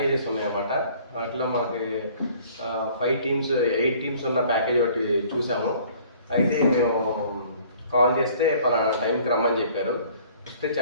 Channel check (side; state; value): both; inverted; correlation -0.54